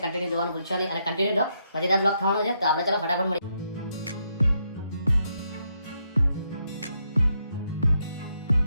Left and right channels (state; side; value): inverted; both; correlation -0.79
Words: કન્ટિન્યુ જોવાનું ભૂલશો નહીં અને કન્ટિન્યુ જો મજેદાર બ્લોગ થવાનો છે. તો આપણે ચલો ફટાફટ મળી.